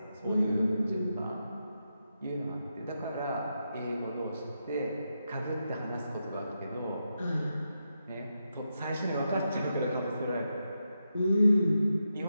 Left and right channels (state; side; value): inverted; both; correlation -0.86